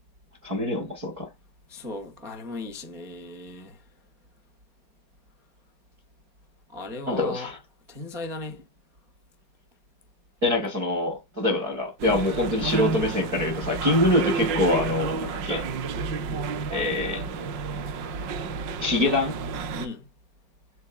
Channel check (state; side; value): late; left; 4.7 ms